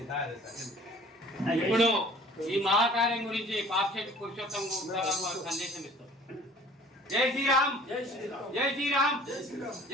ఇప్పుడు ఈ మహాకార్యం గురించి పాక్షిక పురుషోత్తం వారు సందేశం ఇస్తారు. జై శ్రీరామ్. జై శ్రీరామ్. జై శ్రీరామ్.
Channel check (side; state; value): both; normal; correlation 0.50